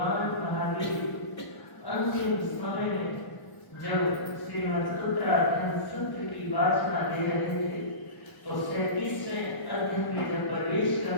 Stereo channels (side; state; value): right; late; 1.0 ms